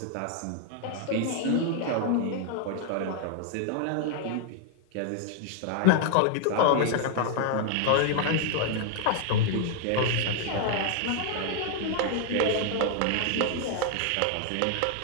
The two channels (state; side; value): different; both; correlation 0.00